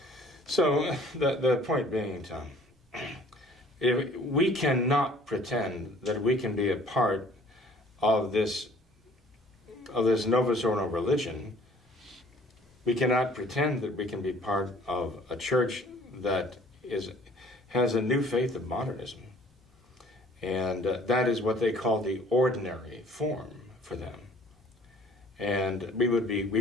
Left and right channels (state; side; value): normal; both; correlation 0.55